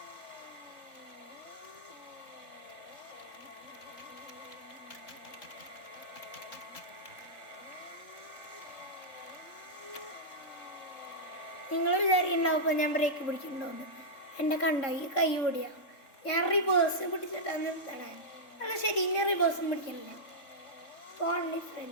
നിങ്ങൾ വിചാരിക്കുന്നുണ്ടാവും ഇപ്പോൾ ഞാൻ ബ്രേക്ക് പിടിക്കുന്നുണ്ടോന്ന്. എൻ്റെ കണ്ട ഈ കൈ ഓടിയാ ഞാൻ റിവേഴ്സ് പിടിച്ചിട്ടാണ് നിർത്തണേ. അല്ല ശരി, ഇനി റിവേഴ്സും പിടിക്കണില്ല. ഓൺലി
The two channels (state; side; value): late; right; 3.6 ms